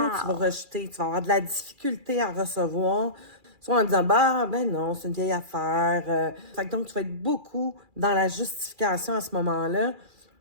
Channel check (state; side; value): late; left; 2.4 ms